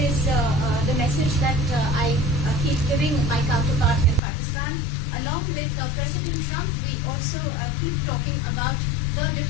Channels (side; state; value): right; drops out; at 4.2 s